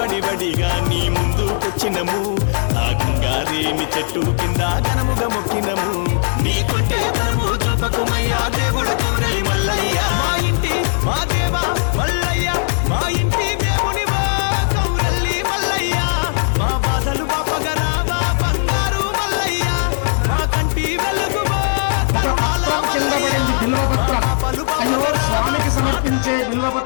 నీ ముందుకొచ్చినము ఆ గంగారేమి చెట్టు కింద ఘనముగా మొక్కినము నీ కొంటే బలము చూపకమయ్యా దేవుడు కౌరలి మల్లయ్య మా ఇంటి మా దేవా మల్లయ్య మా ఇంటి దేవునివా కౌరల్లి మల్లయ్య మా బాధలు బాపగరావా బంగారు మల్లయ్య మా కంటి వెలుగువా స్వామికి సమర్పించే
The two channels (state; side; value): silent; right; digital silence